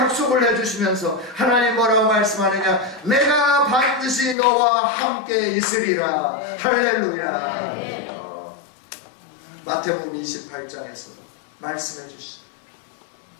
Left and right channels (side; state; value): right; drops out; at 4.4 s